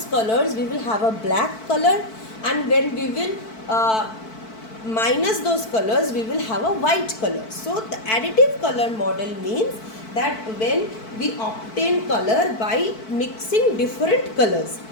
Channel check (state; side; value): late; right; 4.5 ms